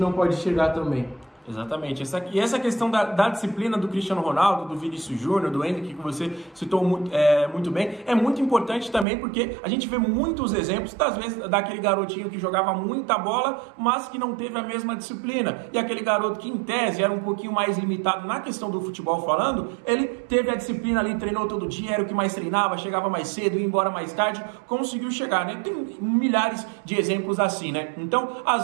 pode chegar também? Exatamente. Essa questão da disciplina do Cristiano Ronaldo, do Vinícius Júnior, do Endrick, que você citou muito bem, é muito importante também porque a gente vê muitos exemplos, às vezes, daquele garotinho que jogava muita bola, mas que não teve a mesma disciplina. E aquele garoto que, em tese, era um pouquinho mais limitado na questão do futebol falando, ele teve a disciplina ali, treinou todo dia, era o que mais treinava, chegava mais cedo, ia embora mais tarde, conseguiu chegar, né? Tem milhares de exemplos assim, né? Então,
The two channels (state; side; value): drops out; left; at 9.1 s